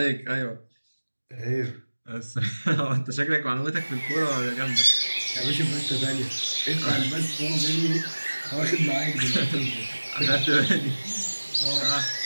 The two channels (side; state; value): both; inverted; correlation -1.00